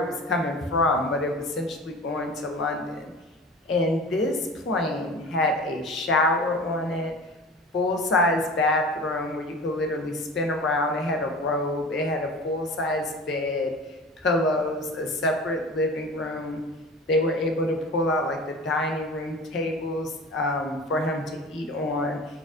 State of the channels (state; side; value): normal; both; correlation 0.37